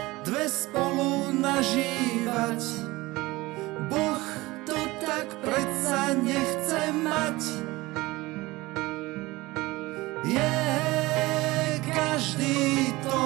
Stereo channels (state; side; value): quieter; left; 20.5 dB